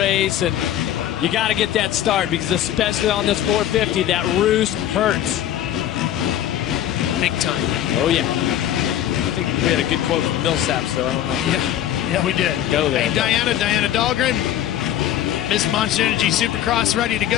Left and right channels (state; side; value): quieter; right; 11.6 dB